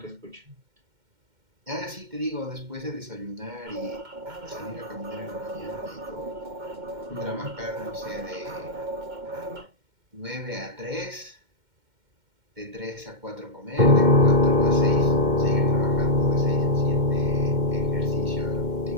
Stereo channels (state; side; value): late; left; 2.1 ms